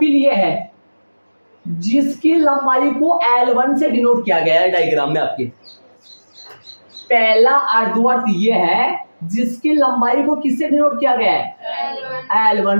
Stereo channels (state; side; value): inverted; both; correlation -1.00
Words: ये है जिसकी लंबाई को L1 से डिनोट किया गया है डायग्राम में आपके। पहला अर्धवर्त ये है जिसकी लंबाई को किससे डिनोट किया गया है,